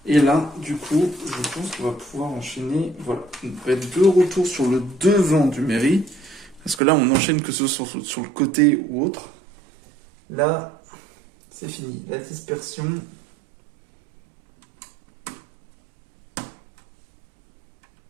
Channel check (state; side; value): drops out; left; at 6.8 s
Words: Et là du coup je pense qu'on va pouvoir enchaîner, voilà, on va être de retour sur le devant du mairie. Parce que là, on enchaîne que ce soit sur le côté ou autre. Là, c'est fini. La dispersion.